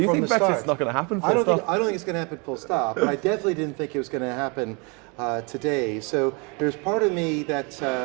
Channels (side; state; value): left; quieter; 31.8 dB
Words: think Brexit's not going to happen full stop? I don't think it's going to happen full stop, but I definitely didn't think it was going to happen today. So there's part of me